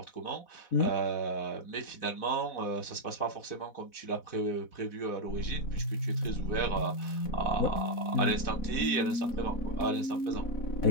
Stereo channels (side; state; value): right; late; 4.1 ms